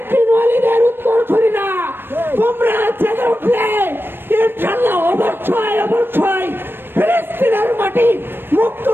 বিন ওয়ালিদের উত্তর ছড়িনা। তোমরা জেগে উঠলে ইনশাআল্লাহ অবশ্যই অবশ্যই ফিলিস্তিনের মাটি মুক্ত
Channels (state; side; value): late; left; 0.099 ms